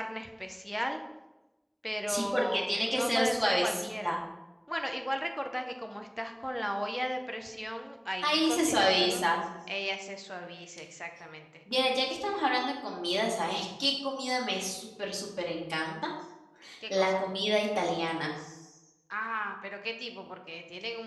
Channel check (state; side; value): identical; both; correlation 1.00